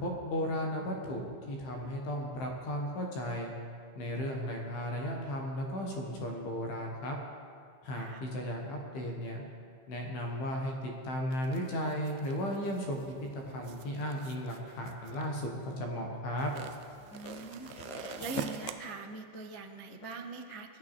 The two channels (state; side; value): late; right; 15 ms